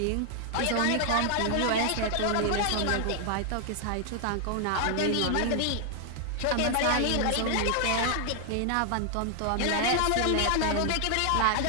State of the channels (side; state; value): both; different; correlation 0.00